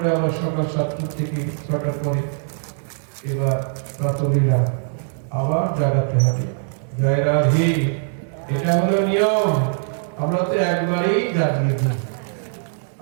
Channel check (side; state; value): left; silent; 65 dB below the other